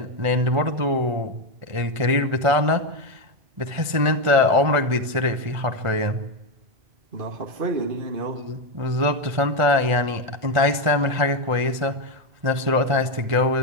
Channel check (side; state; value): left; late; 1.5 ms